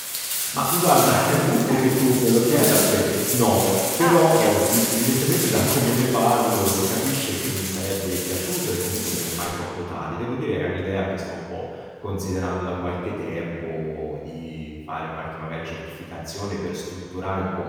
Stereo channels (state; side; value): identical; both; correlation 1.00